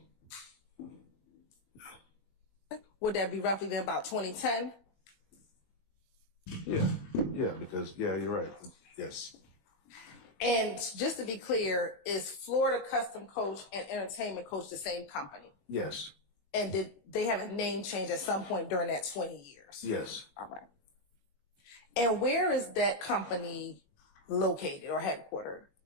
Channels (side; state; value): right; late; 21 ms